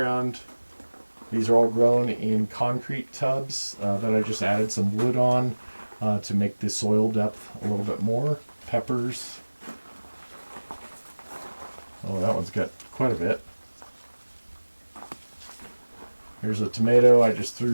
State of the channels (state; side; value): inverted; both; correlation -1.00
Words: These are all grown in concrete tubs that I just added some wood on to make the soil depth a little bit more. Peppers. Oh, that one's got quite a bit. Here's a tomato. I just